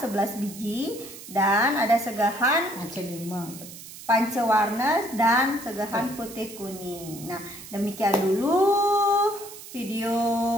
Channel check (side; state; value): right; noise; hiss, 15 dB below the sound